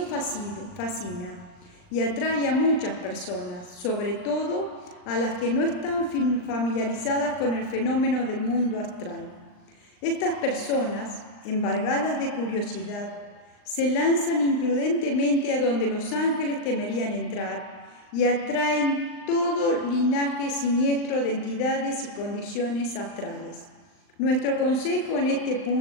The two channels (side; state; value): right; late; 39 ms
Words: fascina y atrae a muchas personas, sobre todo a las que no están familiarizadas con el fenómeno del mundo astral. Estas personas, embargadas de curiosidad, se lanzan imprudentemente a donde los ángeles temerían entrar y atraen todo linaje siniestro de entidades y condiciones astrales. Nuestro consejo en este